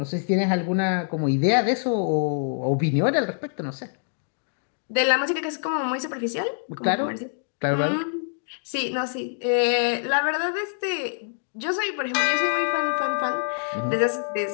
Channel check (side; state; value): right; silent; digital silence